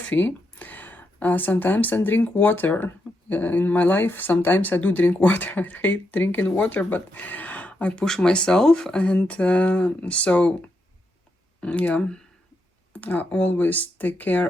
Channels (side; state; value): both; normal; correlation 0.82